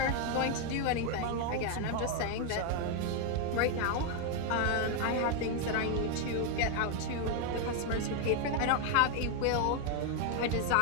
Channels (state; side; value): different; both; correlation 0.01